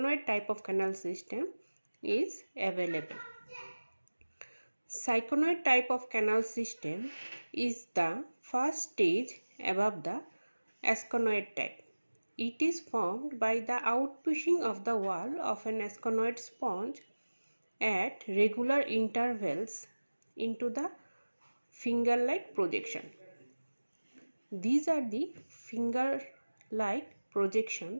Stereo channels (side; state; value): both; inverted; correlation -1.00